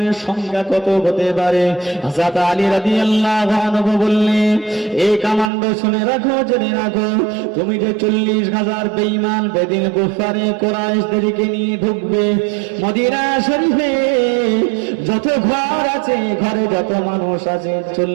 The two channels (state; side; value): drops out; left; at 5.5 s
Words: সংখ্যা কত হতে পারে? হযরত আলী রাদিয়াল্লাহু আনহু বললেন, এই কমান্ডো শুনে রাখো, জেনে রাখো, তুমি যে 40,000 বেঈমান বেদিন কুফারে কুরাইশদেরকে নিয়ে ঢুকবে মদিনা শরীফে, যত ঘর আছে, ঘরে যত মানুষ আছে,